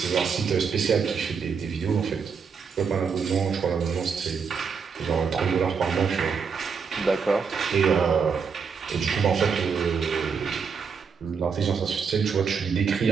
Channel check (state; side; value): quieter; left; 5.9 dB